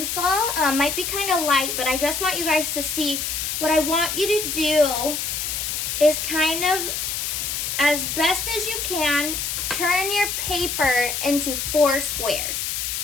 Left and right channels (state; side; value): noise; left; hiss, 2 dB below the sound